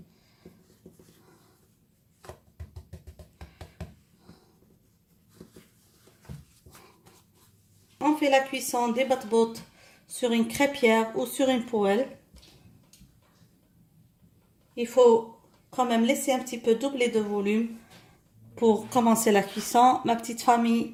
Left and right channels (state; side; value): identical; both; correlation 1.00